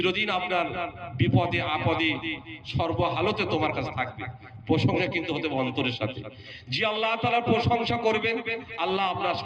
আপনার বিপদে আপদে সর্বহালতে তোমার কাছে থাকবে। প্রশংসা কিন্তু হতে হবে অন্তরের সাথে। যে আল্লাহ তাআলার প্রশংসা করবেন, আল্লাহ আপনার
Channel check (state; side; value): identical; both; correlation 1.00